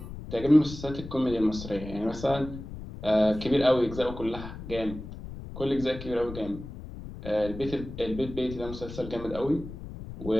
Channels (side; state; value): left; noise; rumble, 11 dB below the sound